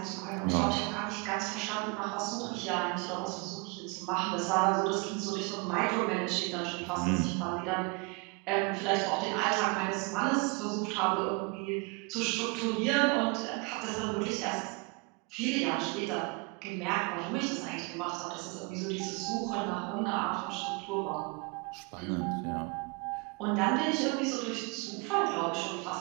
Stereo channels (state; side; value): quieter; left; 29.4 dB